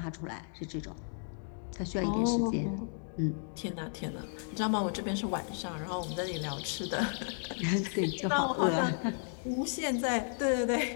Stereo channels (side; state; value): right; silent; 55 dB below the other